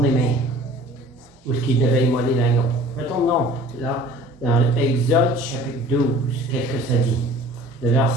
même où il devait immoler l'agneau. Retournons là, dans Exode, chapitre 12. Qu'est-ce que ça dit? Le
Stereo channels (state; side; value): normal; both; correlation 0.47